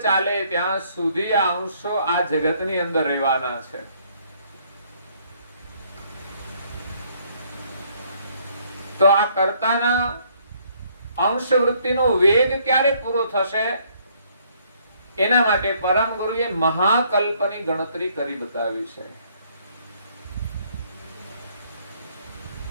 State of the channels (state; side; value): inverted; both; correlation -0.66